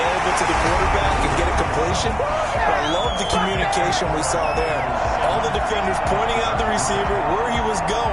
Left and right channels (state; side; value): identical; both; correlation 1.00